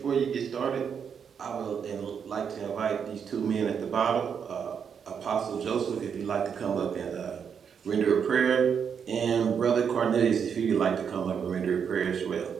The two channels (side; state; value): left; quieter; 7.1 dB